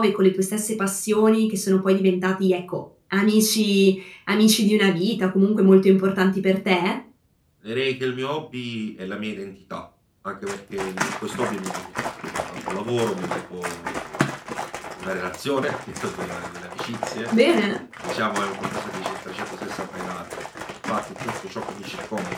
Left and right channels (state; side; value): identical; both; correlation 1.00